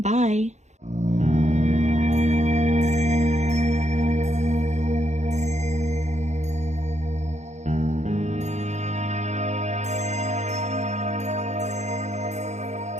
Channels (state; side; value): late; left; 0.33 ms